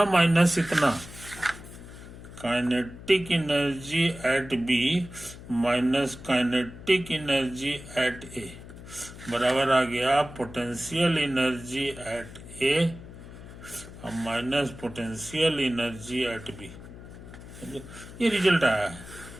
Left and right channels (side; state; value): left; noise; hum, 15 dB below the sound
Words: माइनस इतना, kinetic energy at B minus kinetic energy at A बराबर आ गया पोटेंशियल एनर्जी एट ए और minus potential energy at B. ये रिजल्ट आया है।